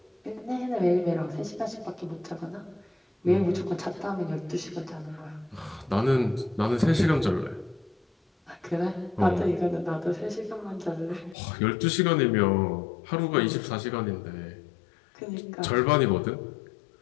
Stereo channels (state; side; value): drops out; right; at 11.4 s